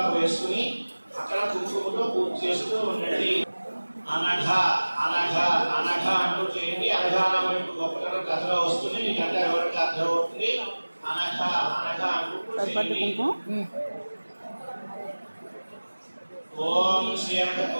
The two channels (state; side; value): inverted; both; correlation -1.00